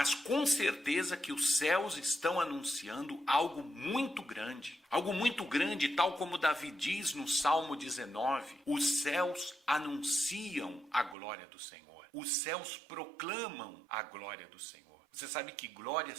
com certeza que os céus estão anunciando algo muito grande. Algo muito grande, tal como Davi diz no Salmo 19, os céus anunciam a glória do Senhor. Os céus proclamam a glória do Senhor. Você sabe que glória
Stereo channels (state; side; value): drops out; left; at 11.2 s